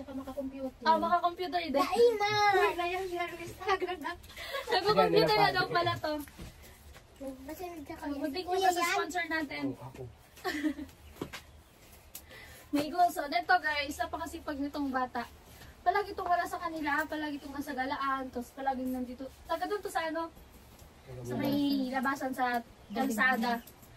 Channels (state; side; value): identical; both; correlation 1.00